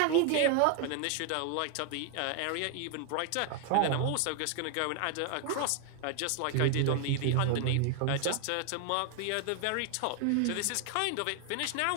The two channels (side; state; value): both; different; correlation 0.00